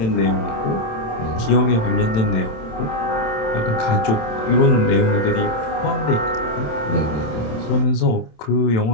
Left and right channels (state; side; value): late; right; 27 ms